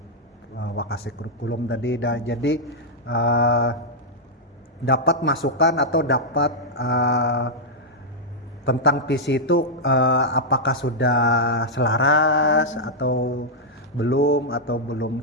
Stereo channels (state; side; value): normal; both; correlation -0.05